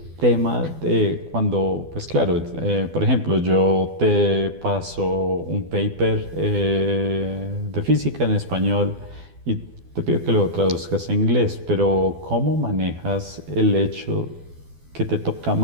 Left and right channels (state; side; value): late; left; 12 ms